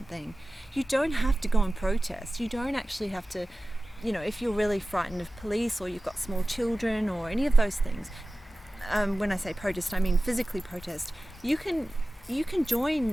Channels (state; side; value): normal; both; correlation 0.96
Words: You don't have to go and protest. You don't actually have to, you know, if you're really frightened of police or you've got small children or any of those things, when I say protest, I mean physically protest. You can